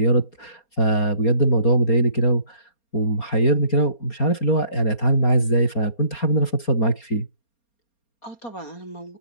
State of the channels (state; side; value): late; right; 4.3 ms